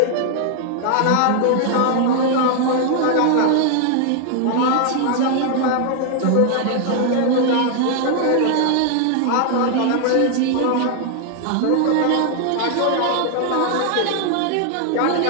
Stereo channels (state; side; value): different; both; correlation 0.00